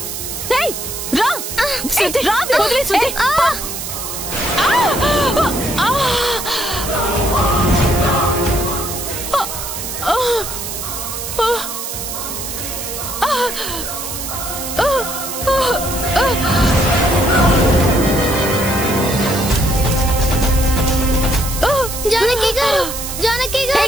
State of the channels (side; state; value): right; noise; hiss, 6 dB below the sound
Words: రా. జానకి గారు, జానకి